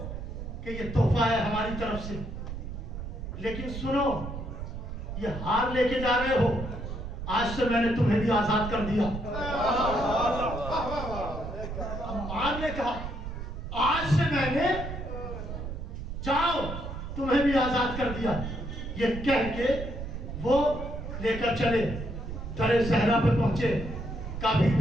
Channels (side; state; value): right; noise; rumble, 7 dB below the sound